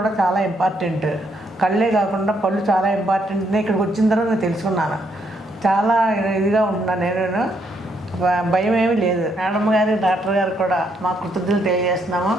చాలా ఇంపార్టెంట్, కళ్ళే కాకుండా పళ్ళు చాలా ఇంపార్టెంట్. ఇక్కడికి వచ్చిన తర్వాత నేను తెలుసుకున్నాను. చాలా ఇదిగా ఉంటున్నాను. నేను భయం ఏమీ లేదు. మేడం గారు డాక్టర్ గారు కూడా మా కృతజ్ఞతలు తెలియజేస్తున్నాము.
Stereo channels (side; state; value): both; normal; correlation 0.74